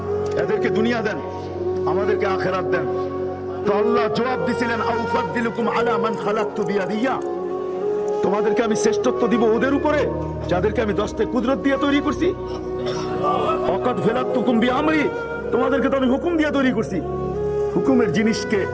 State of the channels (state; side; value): identical; both; correlation 1.00